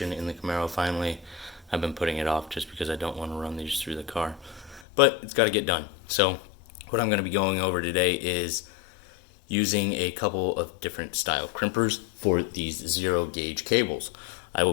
in the Camaro finally. I've been putting it off just because I don't want to run these through the car. But it's got to get done. So what I'm going to be going over today is using a couple of different style crimpers for these 0 gauge cables. I will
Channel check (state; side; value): drops out; right; at 4.9 s